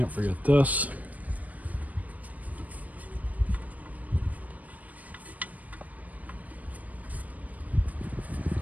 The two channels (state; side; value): late; left; 0.073 ms